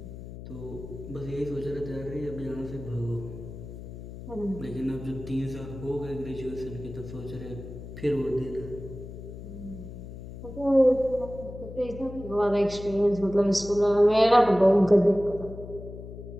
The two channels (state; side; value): noise; left; hum, 12 dB below the sound